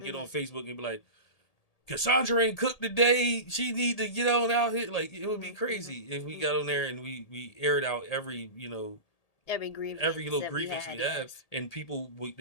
on Mm-hmm. Facebook and be like, Cassandra ain't cooked today. She need to get on out here. Like it would be Mm-hmm. crazy if we got Mm-hmm. on there and we aired out Every every grievance little that we grievance we had, have, yes. and people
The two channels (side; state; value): right; late; 1.8 ms